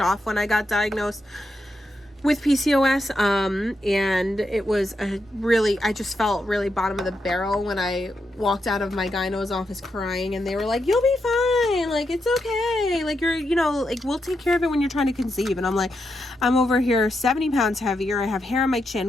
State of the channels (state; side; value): normal; both; correlation 0.84